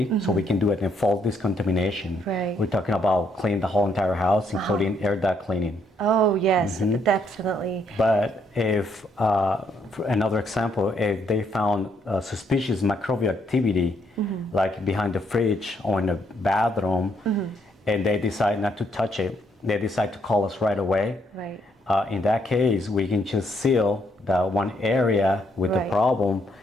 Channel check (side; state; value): both; normal; correlation 0.72